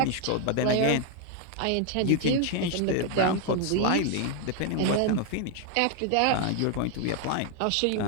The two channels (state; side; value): different; both; correlation 0.00